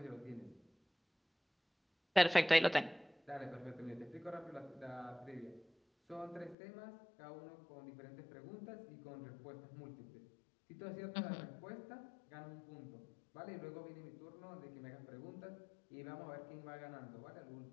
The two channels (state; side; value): drops out; right; at 6.6 s